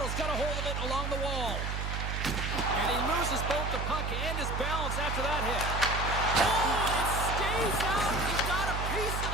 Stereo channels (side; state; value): right; noise; hum, 2 dB below the sound